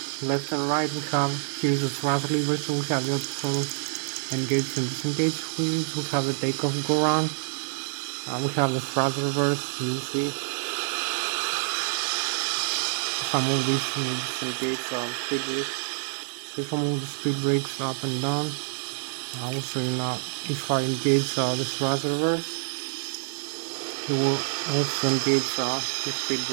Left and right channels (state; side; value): silent; left; digital silence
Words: left and right. We have here's the thrust lever, so we have the auto throttle engage and disengage wheels. We have the takeoff go round. We have the thrust reverse. You see if I move this disengage speed brakes. So if I move the speed brakes up and down, I will show you now. If I engage the thrust reverse, you will also engage the speed